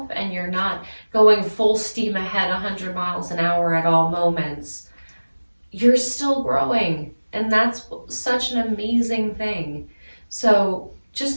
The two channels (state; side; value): inverted; both; correlation -1.00